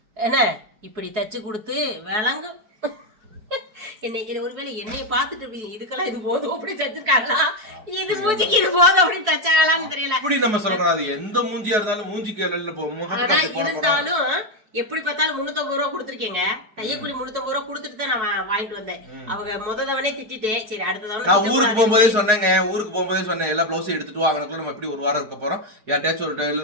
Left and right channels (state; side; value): late; left; 4.6 ms